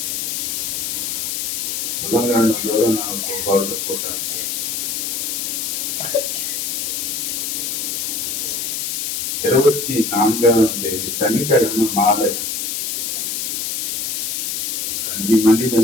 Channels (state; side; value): noise; left; hiss, 1 dB below the sound